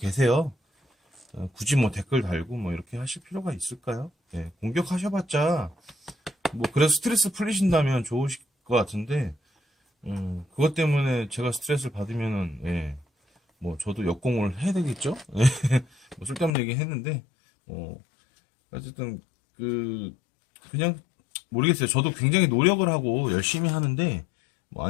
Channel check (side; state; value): right; drops out; at 16.5 s